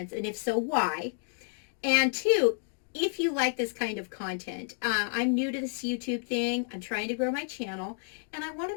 and if so, why? And two, if you like this kind of content. I'm new to this YouTube thing. I'm trying to grow my channel, and I want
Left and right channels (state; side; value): silent; right; 58 dB below the other